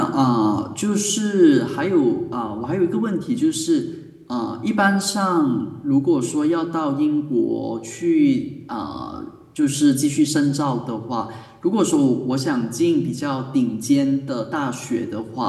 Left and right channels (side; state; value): both; identical; correlation 1.00